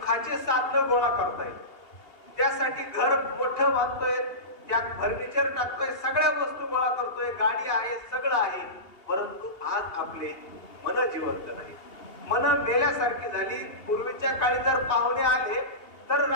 साधन गोळा करतायत. त्यासाठी घर मोठं बांधतोय, त्या फर्निचर टाकतोय, सगळ्या वस्तू गोळा करतोय, गाडी आहे, सगळं आहे, परंतु आज आपले मन जिवंत नाही, मन मेल्यासारखी झाली. पूर्वीच्या काळी जर पाहुणे आले तर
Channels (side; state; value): right; late; 2.8 ms